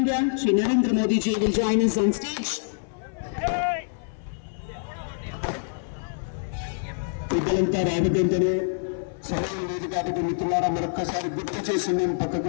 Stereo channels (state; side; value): silent; right; 57 dB below the other